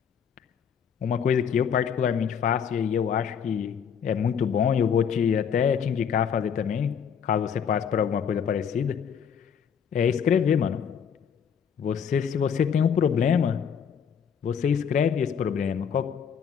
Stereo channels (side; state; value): right; quieter; 7.4 dB